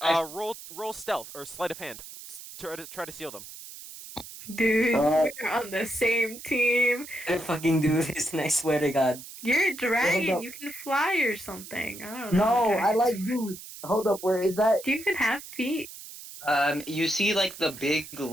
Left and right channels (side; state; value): right; noise; hiss, 14 dB below the sound